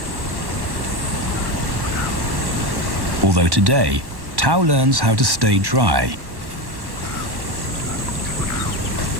Although today, Tau learns how to stay dry.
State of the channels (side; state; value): left; late; 1.1 ms